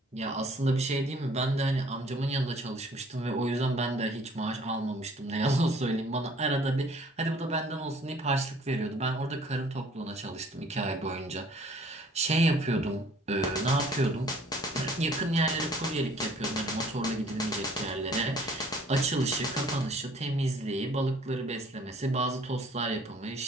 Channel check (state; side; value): normal; both; correlation 0.56